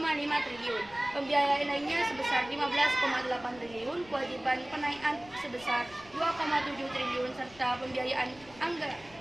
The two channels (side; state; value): left; noise; rumble, 23 dB below the sound